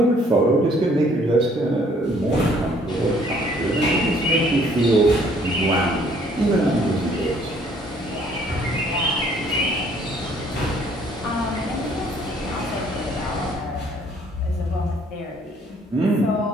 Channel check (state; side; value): normal; both; correlation 0.61